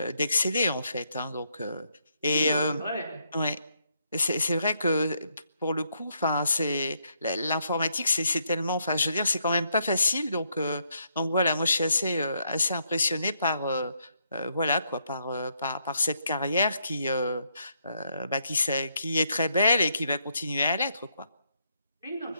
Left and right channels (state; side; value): inverted; both; correlation -0.75